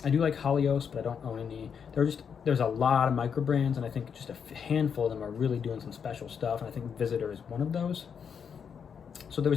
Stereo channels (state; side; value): quieter; right; 7.0 dB